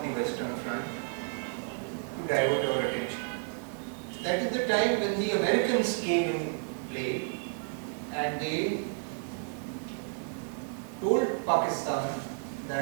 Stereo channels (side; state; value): left; silent; 57 dB below the other